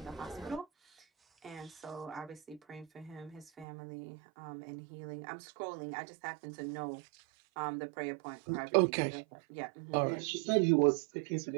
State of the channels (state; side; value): drops out; left; at 3.7 s